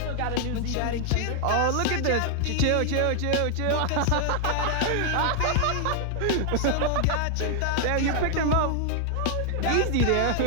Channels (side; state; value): both; different; correlation -0.01